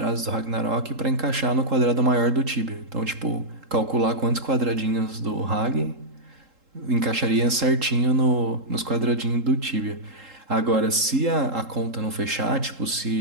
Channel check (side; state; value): left; late; 3.8 ms